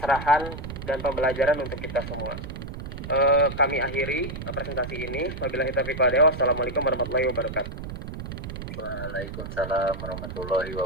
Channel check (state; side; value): noise; right; rumble, 8 dB below the sound